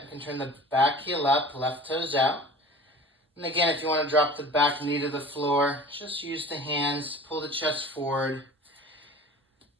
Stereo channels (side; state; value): both; normal; correlation 0.42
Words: You can turn the back heel up, left toes out. And again, if you want to drop the back knee to the floor, just use the hands, pull the chest forward.